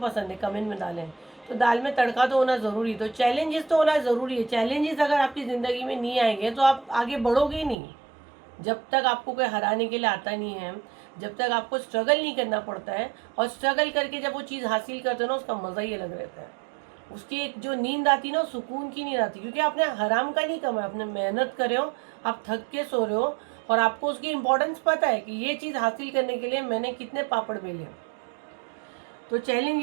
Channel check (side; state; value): left; drops out; at 7.8 s